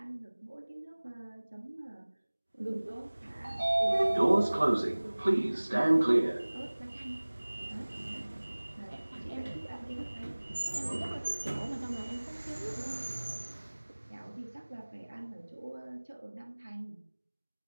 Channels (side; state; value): both; inverted; correlation -1.00